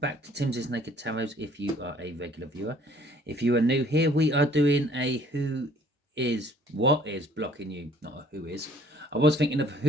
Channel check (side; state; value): both; normal; correlation 0.57